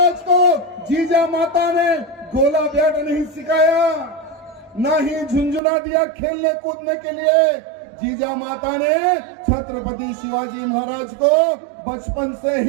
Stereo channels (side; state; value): left; drops out; at 5.6 s